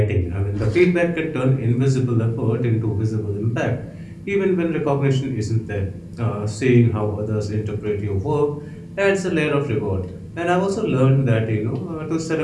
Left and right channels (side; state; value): both; identical; correlation 1.00